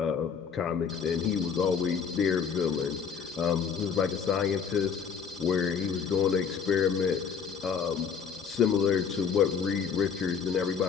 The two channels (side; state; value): right; quieter; 6.7 dB